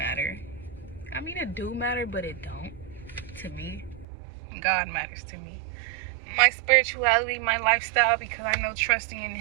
I mean, it do matter, but it don't to me. God matters to me. My spirituality, my lifestyle, because I know trusting in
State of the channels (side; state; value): left; drops out; at 4.0 s